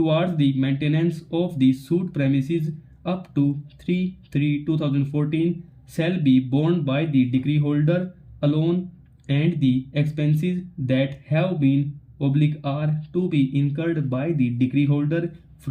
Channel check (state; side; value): identical; both; correlation 1.00